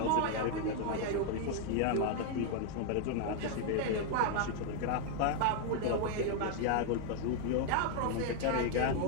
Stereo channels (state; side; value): different; both; correlation 0.00